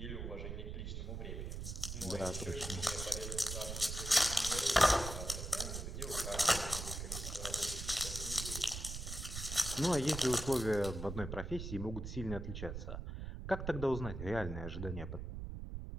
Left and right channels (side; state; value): right; noise; rumble, 6 dB below the sound